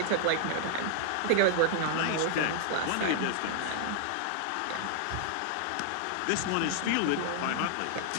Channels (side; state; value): both; different; correlation -0.01